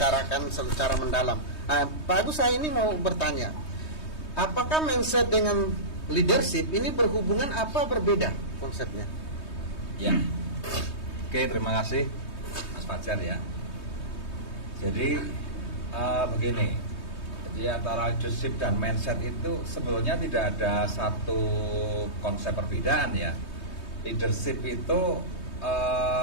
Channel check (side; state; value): right; late; 3.2 ms